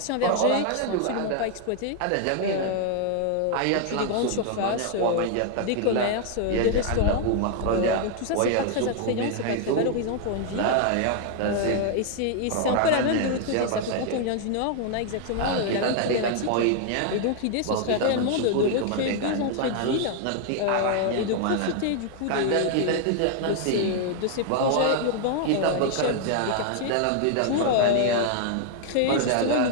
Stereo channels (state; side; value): different; both; correlation 0.00